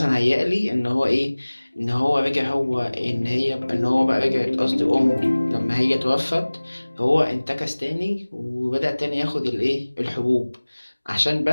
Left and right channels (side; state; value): both; inverted; correlation -1.00